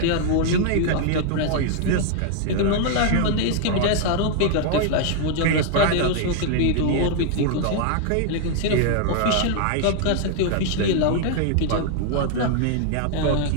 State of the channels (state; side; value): different; both; correlation 0.00